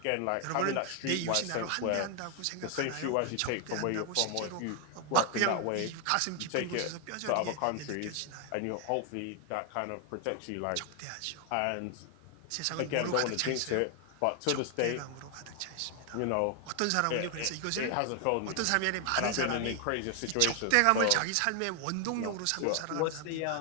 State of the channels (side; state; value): both; different; correlation 0.00